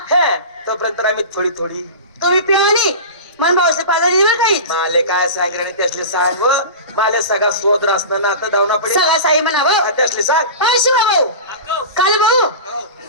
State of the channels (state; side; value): inverted; both; correlation -0.30